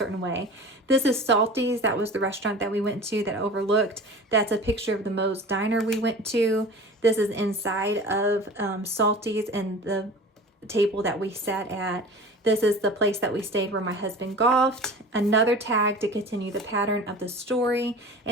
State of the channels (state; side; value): normal; both; correlation 0.38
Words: way. This is Salty's. That was the restaurant that we went to that overlooked. That's a picture of the Moe's Diner we went to. This is inside of Salty's and the table that we sat at. This is the place that we stayed where my husband golfed. Another tag to continue the pattern of the story.